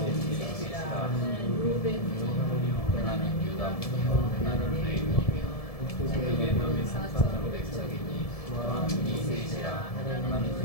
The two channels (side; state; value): right; late; 1.7 ms